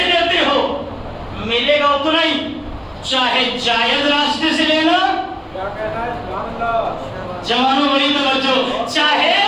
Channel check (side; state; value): both; identical; correlation 1.00